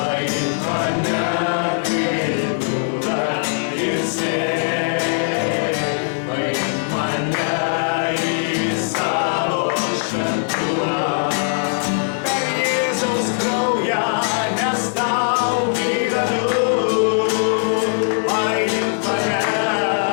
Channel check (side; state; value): right; silent; 61 dB below the other